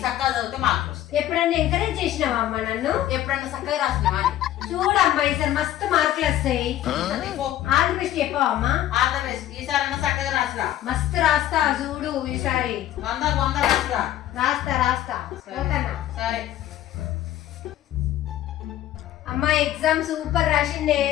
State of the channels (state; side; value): quieter; right; 13.0 dB